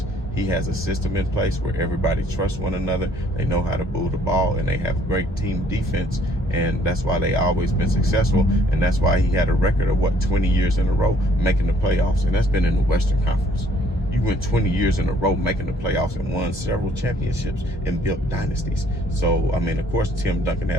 he has a system in place where everybody trusts one another. They know how to move the ball, and they have great team defense. And that's why they always been successful. And that's why he had a record of 20 years in a row making the playoffs. And that's been in the Western Conference. You went 20 years in a row making the playoffs and won several championships and built dynasties. So, I mean, of course, Tim Duncan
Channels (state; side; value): normal; both; correlation 0.62